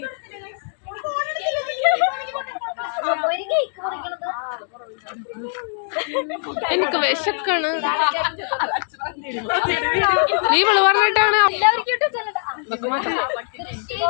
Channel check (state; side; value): silent; right; 64 dB below the other